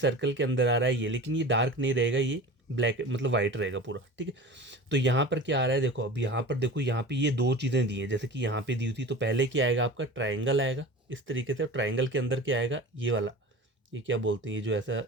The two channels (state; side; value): normal; both; correlation 0.36